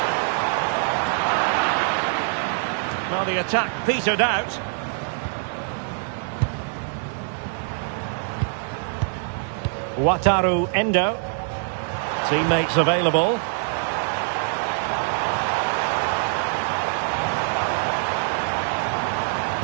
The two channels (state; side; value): silent; left; 63 dB below the other